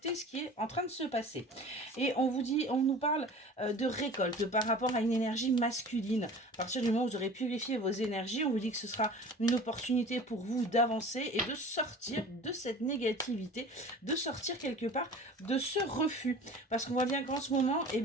ce qui est en train de se passer. Et on vous dit, on nous parle de récolte par rapport à une énergie masculine. À partir du moment où vous aurez purifié vos énergies, on vous dit que ce sera une opportunité pour vous d'avancer et de sortir de cette négativité, de sortir quelque part de ce refus. Parce qu'on voit bien qu'en ce moment, eh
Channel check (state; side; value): normal; both; correlation 0.41